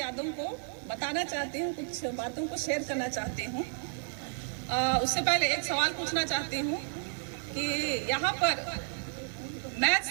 को बताना चाहती हूँ, कुछ बातों को शेयर करना चाहती हूँ। उससे पहले एक सवाल पूछना चाहती हूँ कि यहाँ पर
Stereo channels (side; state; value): left; silent; digital silence